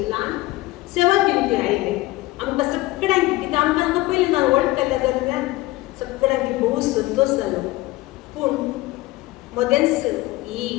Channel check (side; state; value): right; quieter; 19.0 dB